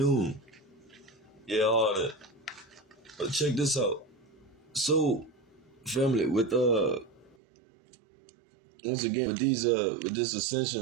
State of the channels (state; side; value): drops out; left; at 7.4 s